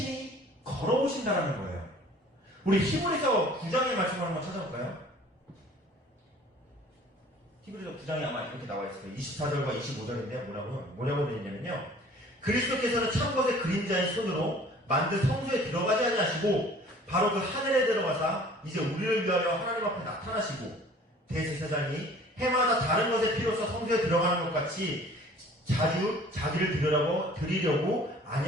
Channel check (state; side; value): normal; both; correlation 0.50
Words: 걸어오신다라는 거예요. 우리 히브리서 9장의 말씀을 한번 찾아볼까요? 히브리서 9장에 아마 이렇게 나와 있어요. 24절과 25절인데 뭐라고 되어 있냐면요. 그리스도께서는 참 것의 그림자인 손으로 만든 성소에 들어가지 아니하시고 바로 그 하늘에 들어가사 이제 우리를 위하여 하나님 앞에 나타나시고 대제사장이 해마다 다른 것의 피로써 성소에 들어가는 것 같이 자주 자기를 드리려고